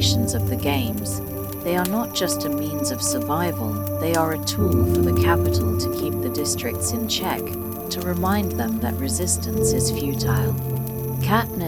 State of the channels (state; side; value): identical; both; correlation 1.00